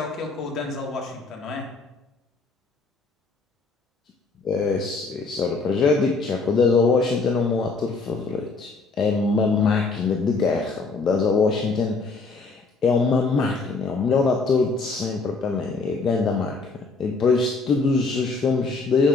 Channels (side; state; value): right; quieter; 4.0 dB